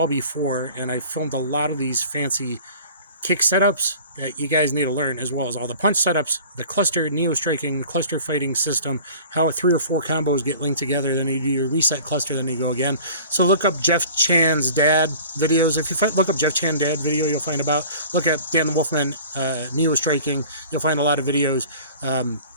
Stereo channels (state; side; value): inverted; both; correlation -0.45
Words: before, and I filmed a lot of these fancy kick setups that you guys need to learn, as well as all the punch setups, the cluster neo-striking, cluster fighting system, how 3 or 4 combos get linked together, then you do your reset cluster, then you go again. So look up Jeff Chan's dad videos. If you look up Jeff Chan dad video, you'll find about. Look at Dan the Wolfman neo-striking. You'll find a lot of videos,